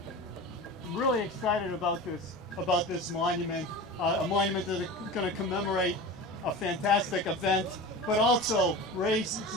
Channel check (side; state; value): both; normal; correlation 0.32